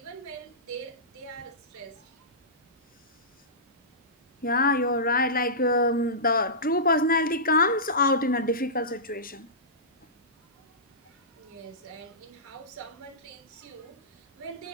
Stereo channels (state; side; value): normal; both; correlation -0.19